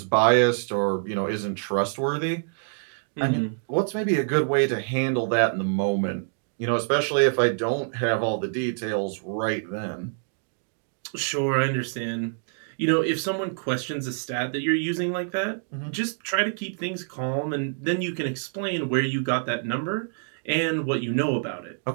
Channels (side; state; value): left; silent; digital silence